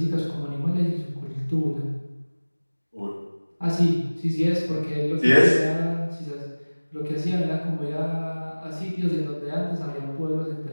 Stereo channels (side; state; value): both; inverted; correlation -1.00